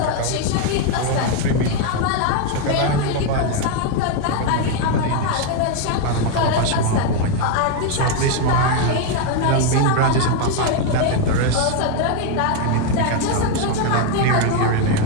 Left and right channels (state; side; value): different; both; correlation 0.01